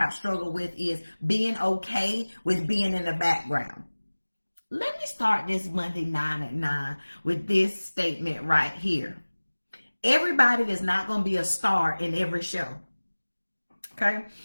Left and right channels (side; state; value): both; inverted; correlation -1.00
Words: struggled with, is being okay with being in the background. Let me start this Monday 9 at 9 with this statement right here. Everybody is not going to be a star in every show. Okay?